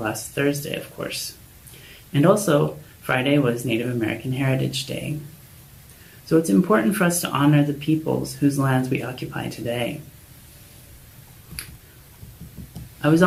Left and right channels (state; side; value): identical; both; correlation 1.00